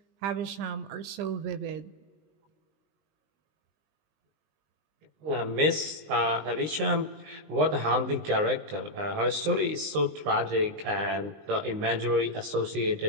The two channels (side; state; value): left; late; 19 ms